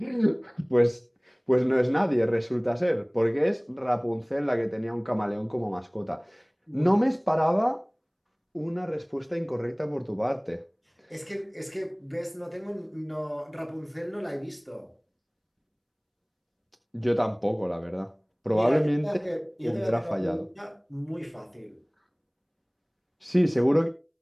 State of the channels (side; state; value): both; identical; correlation 1.00